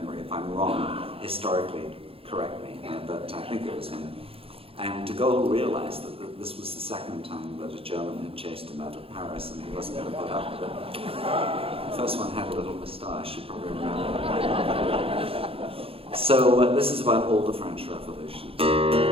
If I'm wrong, historically, correct me. But I think it was him. And de Gaulle realized that this was the second time that a German had chased him out of Paris, and he wasn't going to put up with it. The first one had a little moustache, you probably remember. So this is about all the French revolutions.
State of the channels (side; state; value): left; late; 0.27 ms